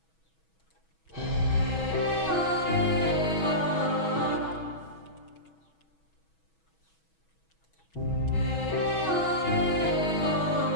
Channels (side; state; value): right; late; 6.2 ms